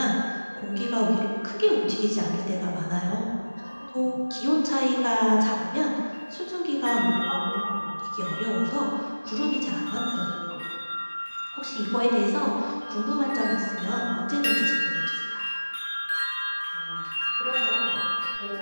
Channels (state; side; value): inverted; both; correlation -1.00